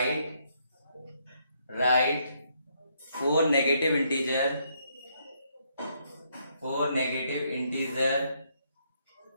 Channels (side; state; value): both; inverted; correlation -0.73